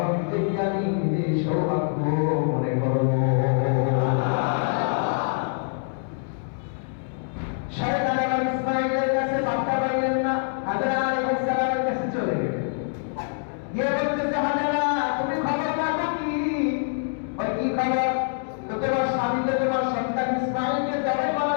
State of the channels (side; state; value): right; silent; digital silence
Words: দেখি আমি নিজে সৌভাগ্য মনে করবো। শয়তান এবার ইসমাঈলের কাছে বার্তা পাইলেন না, হাজরা আলাইহিস সালামের কাছে চলে গেলেন। গিয়ে বলতেছে, হাজরা তুমি খবর রাখো কি? ওই কি খবর? তো তোমার স্বামী তো তোমার সন্তান ইসমাঈলকে জবাই